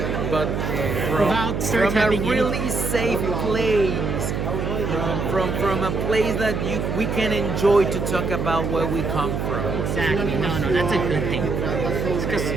but Without stereotyping from a really safe place, from a place that we can enjoy to talk about where we come from. Exactly. No, that's a good thing. Because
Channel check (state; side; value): noise; right; hum, 2 dB below the sound